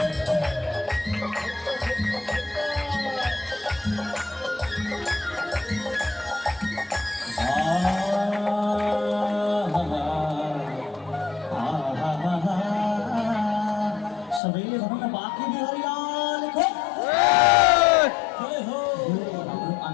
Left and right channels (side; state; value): right; drops out; at 14.4 s